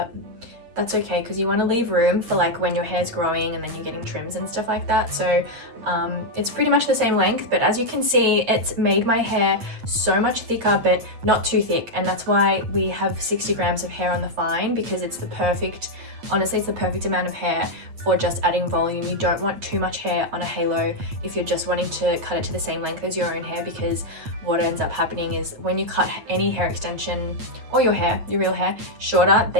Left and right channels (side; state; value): left; late; 8.6 ms